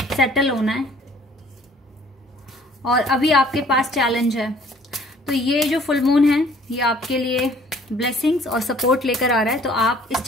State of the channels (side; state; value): both; normal; correlation 0.56